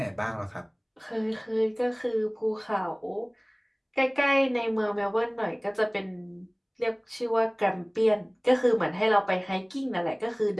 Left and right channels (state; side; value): identical; both; correlation 1.00